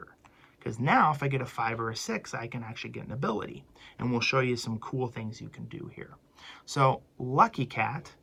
Because now, if I get a 5 or a 6, I can actually get an ability. And we'll show you some cool things you can do here. So Lucky Cat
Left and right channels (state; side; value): identical; both; correlation 1.00